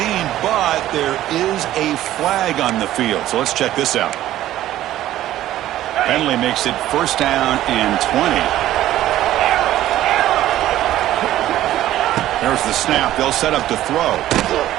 but there is a flag on the field. So let's check this out. Penalty makes it first down and 20. There's the snap. They'll set up to throw.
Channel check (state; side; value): quieter; left; 13.7 dB